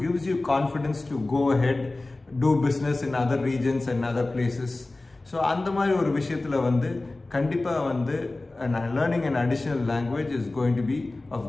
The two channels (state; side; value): quieter; right; 3.0 dB